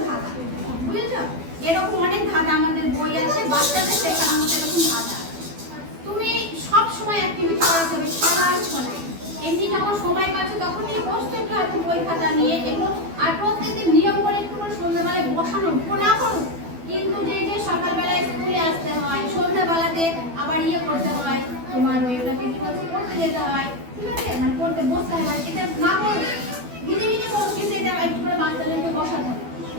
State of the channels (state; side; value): late; left; 12 ms